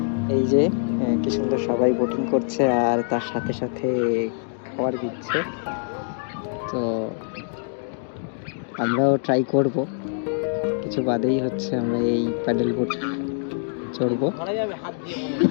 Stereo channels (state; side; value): silent; right; digital silence